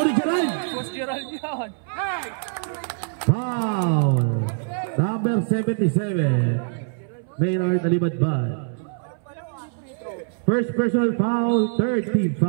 ni Gerald. Gerald yun. Foul. Number 77. Maynard Alibadbad. First personal foul. Third team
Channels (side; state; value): left; silent; 61 dB below the other